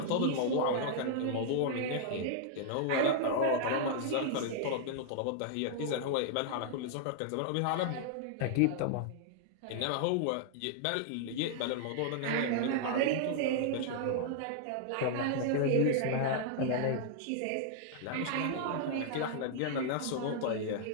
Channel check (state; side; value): different; both; correlation -0.01